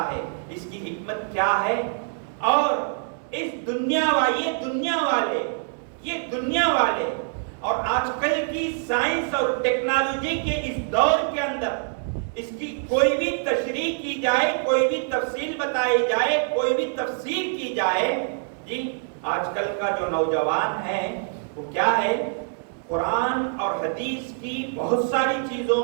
ہے اس کی حکمت کیا ہے. اور اس دنیا والے اور آج کل کی سائنس اور ٹیکنالوجی کے اس دور کے اندر اس کی کوئی بھی تشریح کی جائے، کوئی بھی تفصیل بتائی جائے، کوئی بھی تفسیر کی جائے، جی آج کل کا جو نوجوان ہے وہ کیا ہے، قرآن اور حدیث کی بہت ساری چیزوں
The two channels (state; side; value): silent; left; 62 dB below the other